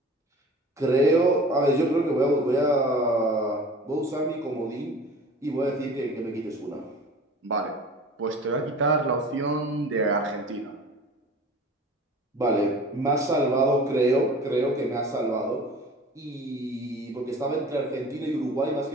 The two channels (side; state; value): both; normal; correlation 0.42